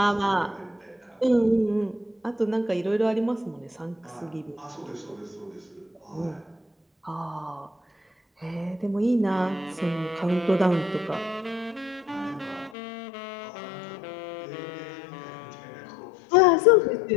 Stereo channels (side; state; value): right; drops out; at 12.8 s